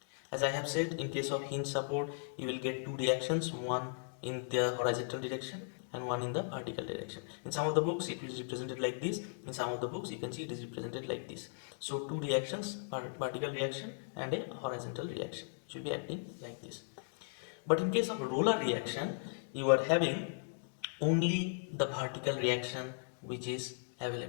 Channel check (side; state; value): right; silent; digital silence